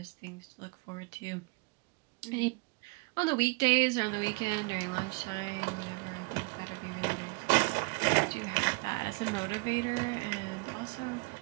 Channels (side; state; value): left; quieter; 29.1 dB